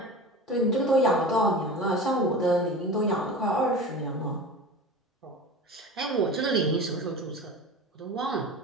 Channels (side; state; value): both; normal; correlation 0.33